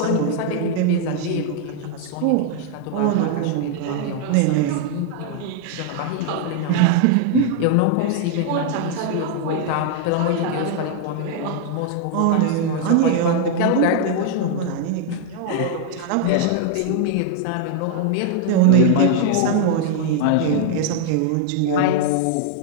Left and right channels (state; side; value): different; both; correlation 0.00